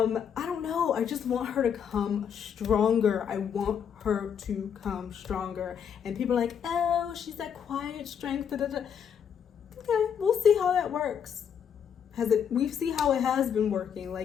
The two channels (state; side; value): quieter; right; 7.8 dB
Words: don't know. I just want her to come stronger. I want her to come stronger. And people are oh, she's that quiet strength. Da, da, da. Okay, we'll see how that works. We see how it has been working.